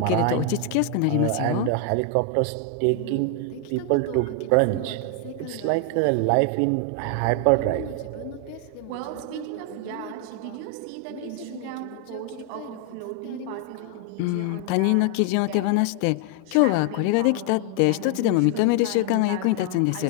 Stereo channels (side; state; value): both; different; correlation 0.00